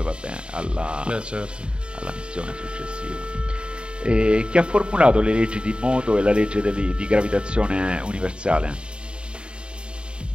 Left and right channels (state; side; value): late; left; 0.053 ms